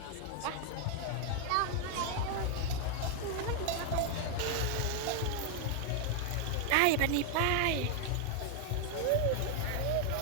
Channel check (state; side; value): different; both; correlation 0.00